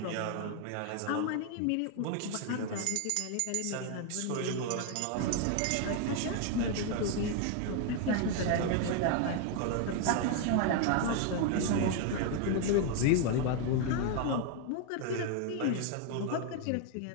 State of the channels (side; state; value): both; different; correlation 0.00